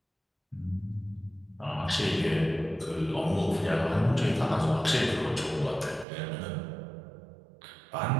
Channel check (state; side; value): drops out; left; at 6.1 s